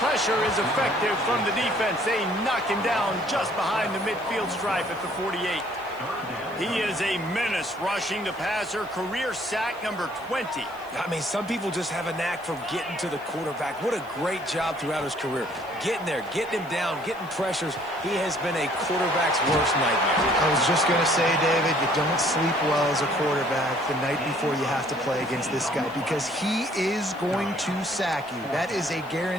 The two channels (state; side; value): noise; right; hiss, 26 dB below the sound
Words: Pressure is effective from the defense. They knock him down just behind the midfield stripe at the 48. He is a menace rushing the passer. Career sack number 20. I mean, some people just have a knack for getting to the quarterback. What a great job throughout his career. Getting there, getting him down, getting pressures. He has been a quarterback's worst nightmare. I was just going to say, David, you don't sleep well as a quarterback the night before you have to play against this guy because he is going to sack you. That is a